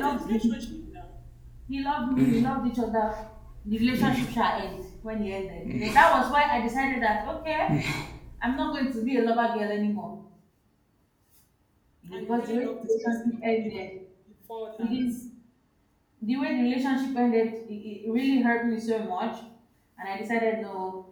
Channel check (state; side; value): identical; both; correlation 1.00